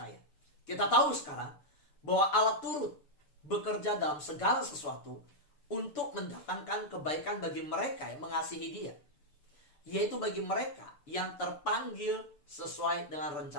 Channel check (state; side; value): late; right; 6.9 ms